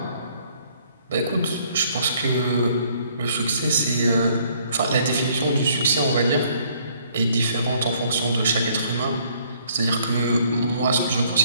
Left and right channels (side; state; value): both; inverted; correlation -0.63